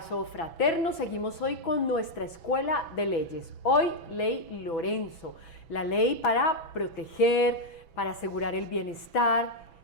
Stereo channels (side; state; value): right; late; 6.1 ms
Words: fraterno. Seguimos hoy con nuestra Escuela de Leyes. Hoy, Ley Lorenzo, la ley para proteger, para asegurar el bienestar